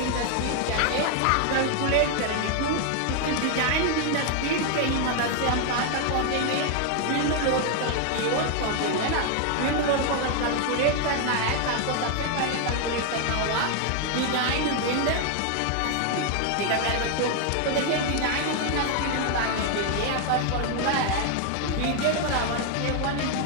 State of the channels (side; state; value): both; different; correlation 0.00